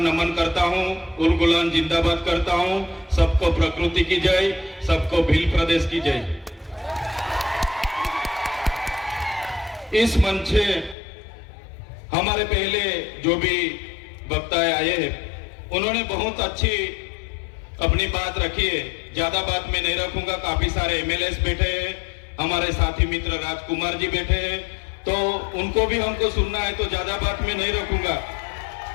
करता हूँ, उलगुलान जिंदाबाद करता हूँ। सबको प्रकृति की जय, सबको भील प्रदेश की जय। इस मंच से हमारे पहले जो भी वक्ता आए हैं उन्होंने बहुत अच्छी अपनी बात रखी है। ज्यादा बात मैं नहीं रखूंगा। काफी सारे एमएलएस बैठे हैं, हमारे साथी मित्र राजकुमार जी बैठे हैं, तो उनको भी हमको सुनना है, तो ज्यादा बात मैं नहीं रखूंगा।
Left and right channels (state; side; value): drops out; right; at 11.0 s